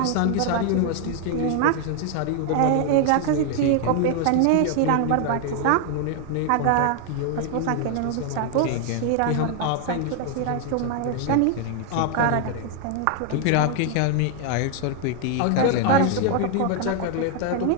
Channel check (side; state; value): both; different; correlation 0.00